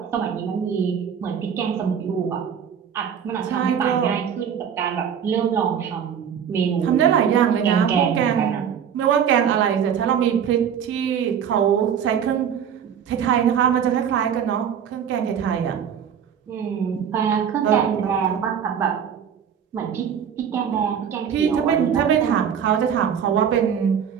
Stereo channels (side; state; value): left; quieter; 8.1 dB